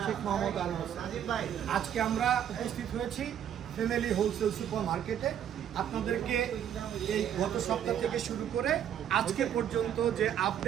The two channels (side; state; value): left; quieter; 9.7 dB